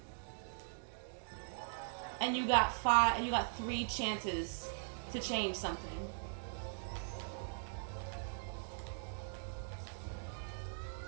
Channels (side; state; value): left; silent; digital silence